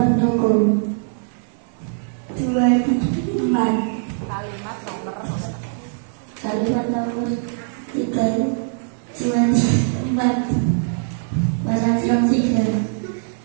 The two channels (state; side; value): silent; left; digital silence